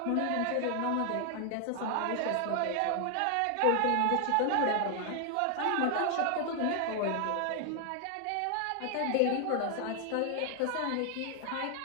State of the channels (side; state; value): both; different; correlation 0.00